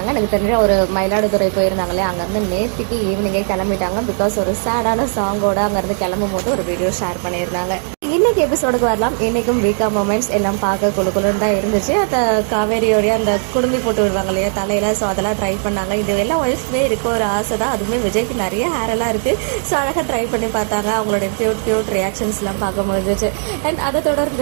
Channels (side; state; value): left; silent; 59 dB below the other